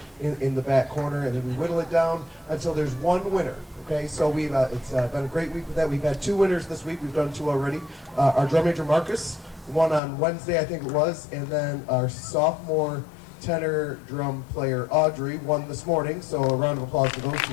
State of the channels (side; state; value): right; drops out; at 10.0 s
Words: in the back corner, and then we whittle it down until there's one winner. Okay, so it's been a great week with that. We've had 2 winners this week. We've done 2 already. Our drum major Marcus won on Wednesday, I think it was, and then our sophomore tenor drum player Audrey won this morning. So a round of applause for those two